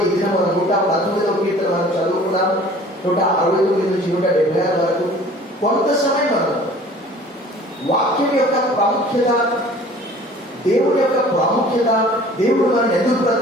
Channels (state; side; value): normal; both; correlation 0.48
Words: ఈ దినం మనం 119వ కీర్తన మనం చదువుకున్నాం. 169 నుంచి 176 వరకు కొంత సమయం మనం వాక్యం యొక్క ప్రాముఖ్యత, దేవుడి యొక్క ప్రాముఖ్యత, దేవుడు మనం ఎందుకు